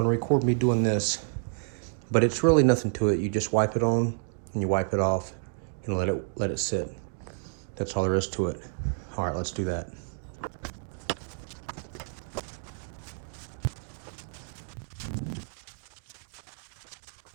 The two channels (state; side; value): silent; left; digital silence